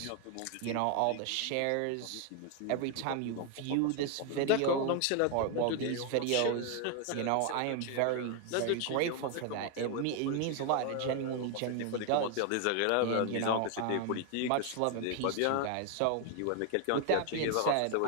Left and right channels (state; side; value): different; both; correlation 0.01